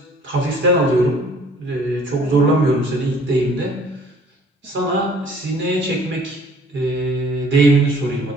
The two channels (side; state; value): both; normal; correlation 0.55